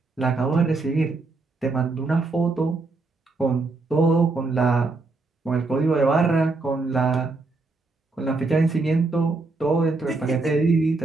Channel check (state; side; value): quieter; left; 3.6 dB